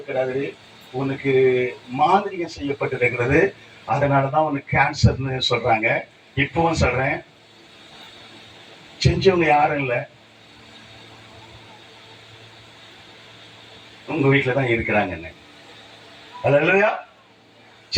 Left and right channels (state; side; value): identical; both; correlation 1.00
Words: கிடையாது, உனக்கு மாதிரிகம் செய்யப்பட்டிருக்கிறது, அதனாலதான் உனக்கு கேன்சர்னு சொல்றாங்க. இப்பவும் சொல்றேன், செஞ்சவங்க யாரும் இல்ல, உங்க வீட்டுலதான் இருக்கிறாங்கன்னு. அல்லேலூயா.